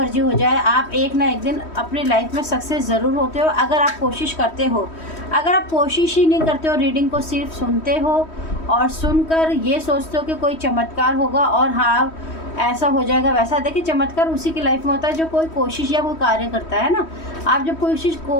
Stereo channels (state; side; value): late; right; 3.1 ms